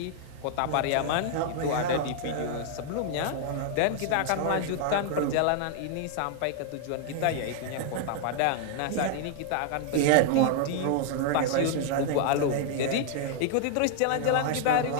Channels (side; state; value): both; different; correlation -0.01